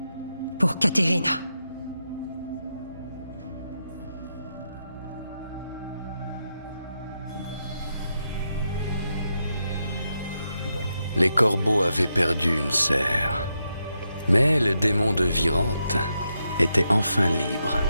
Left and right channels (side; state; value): both; inverted; correlation -0.84